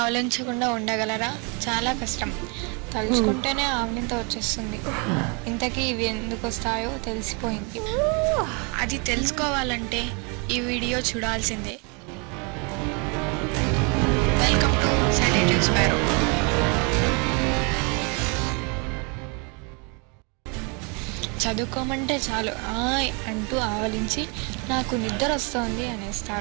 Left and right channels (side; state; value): left; quieter; 33.4 dB